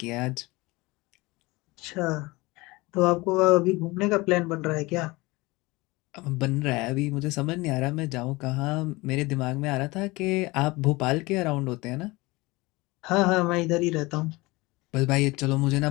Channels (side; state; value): right; quieter; 22.4 dB